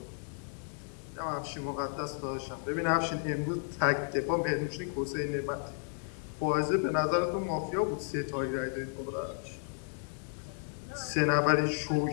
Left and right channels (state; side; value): silent; right; 56 dB below the other